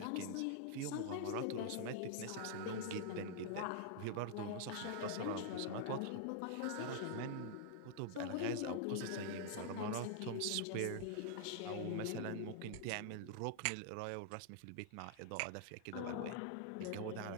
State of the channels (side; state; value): both; different; correlation -0.01